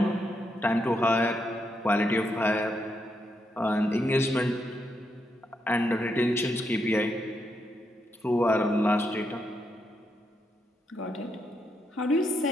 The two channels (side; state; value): both; normal; correlation 0.80